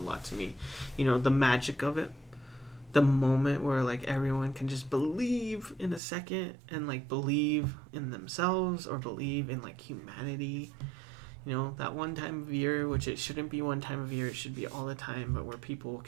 lot to me. The magic of it. The moment where everyone can just believe in a second and believe in themselves or believe in humanity. That one time of year, which it shouldn't be one time of year, it should be all the time, but where people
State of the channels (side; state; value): left; drops out; at 6.0 s